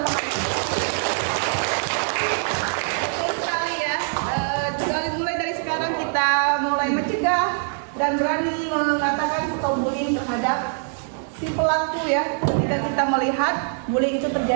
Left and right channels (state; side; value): silent; left; 63 dB below the other